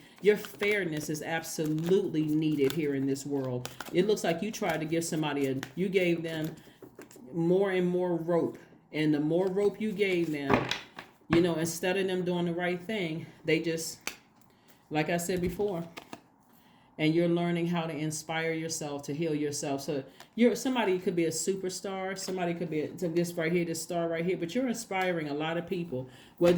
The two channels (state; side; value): identical; both; correlation 1.00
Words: Your fairness is absolutely needed here in this world. It looks like you tried to give somebody you gave them more and more rope. And the more rope you gave them, instead of them doing the right thing, they just, like I said before, and you're learning how to inspire yourself, to heal yourself. So somebody could be a superstar, somebody could be this right here, this star right here, but you're inspiring a lot of people,